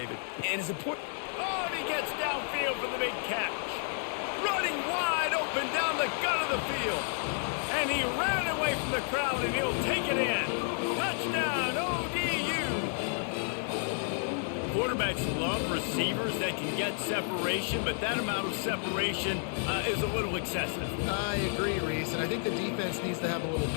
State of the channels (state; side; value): silent; right; 57 dB below the other